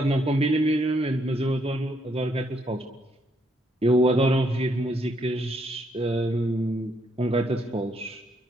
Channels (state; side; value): normal; both; correlation 0.73